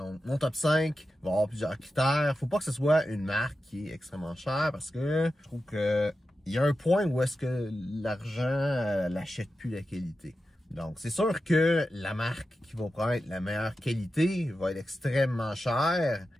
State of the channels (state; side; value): normal; both; correlation 0.91